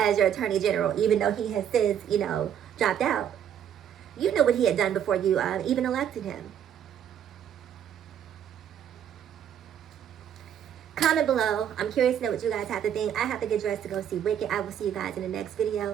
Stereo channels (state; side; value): quieter; left; 9.3 dB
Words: your attorney general, even though he has since, dropped out. You know what he had done before you even elected him. Comment below. I'm curious to know what you guys have to think. I have to get dressed to go see Wicked. I will see you guys in the next